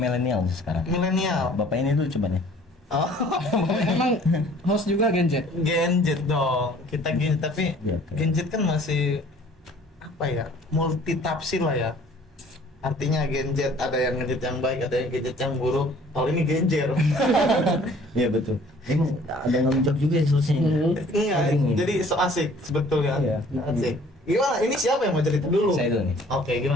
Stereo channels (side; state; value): both; normal; correlation 0.54